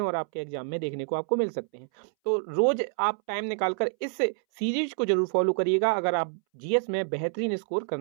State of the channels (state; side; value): silent; left; 60 dB below the other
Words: और आपके एग्जाम में देखने को आपको मिल सकते हैं। तो रोज आप टाइम निकालकर इस सीरीज को जरूर फॉलो करिएगा अगर आप जीएस में बेहतरीन स्कोर